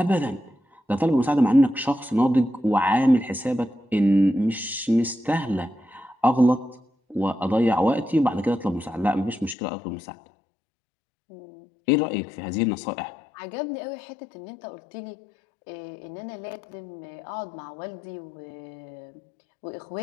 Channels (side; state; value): right; drops out; at 9.6 s